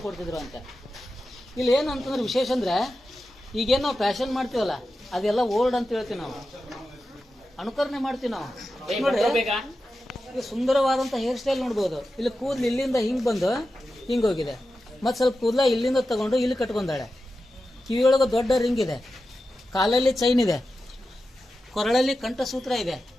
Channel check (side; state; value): both; normal; correlation 0.92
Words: ಕೊಡ್ತಿದ್ರು ಅಂತ. ಇಲ್ಲಿ ಏನಂತಂದ್ರೆ ವಿಶೇಷ ಅಂದ್ರೆ, ಈಗೇನು ನಾವು ಫ್ಯಾಷನ್ ಮಾಡ್ತೀವಲ್ಲ, ಅದೆಲ್ಲ ಓಲ್ಡ್ ಅಂತ ಹೇಳ್ತೀವಿ ನಾವು, ಅನುಕರಣೆ ಮಾಡ್ತೀವಿ ನಾವು. ನೋಡಿ, ಈಗ ಸುಂದರವಾದಂಥ ಹೇರ್ ಸ್ಟೈಲ್ ನೋಡ್ಬೋದು. ಇಲ್ಲಿ ಕೂದಲು ಇಲ್ಲಿಂದ ಹಿಂಗೆ ಬಂದು ಹಿಂಗೆ ಹೋಗಿದೆ, ಮತ್ತು ಸ್ವಲ್ಪ ಕೂದಲ ಇಲ್ಲಿಂದ ತಗೊಂಡು ಇಲ್ಲಿ ಕಟ್ಕೊಂಡಾಳೆ. ಕಿವಿಯೊಳಗೆ ದೊಡ್ಡ ರಿಂಗ್ ಇದೆ, ಕಾಲಲ್ಲಿ ಚೈನ್ ಇದೆ, ಕೊರಳಲ್ಲಿ ಕಂಠಸೂತ್ರ ಇದೆ,